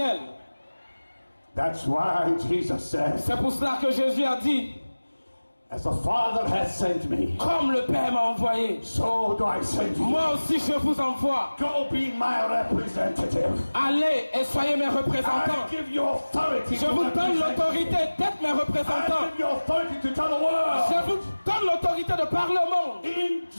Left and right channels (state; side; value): inverted; both; correlation -1.00